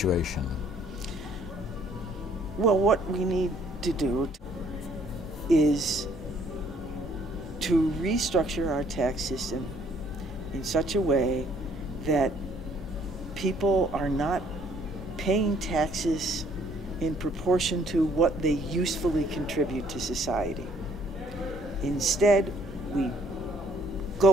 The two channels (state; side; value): normal; both; correlation 0.63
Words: Well, what we need to do is to restructure our tax system in such a way that people are not paying taxes in proportion to what they usefully contribute to society. Instead, we